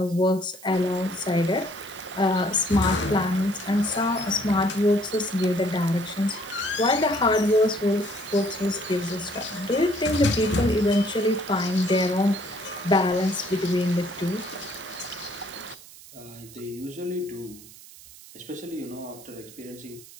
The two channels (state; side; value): noise; right; hiss, 19 dB below the sound